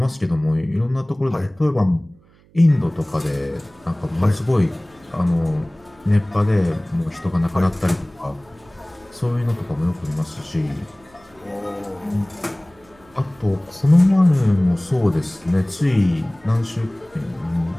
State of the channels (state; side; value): noise; right; hum, 29 dB below the sound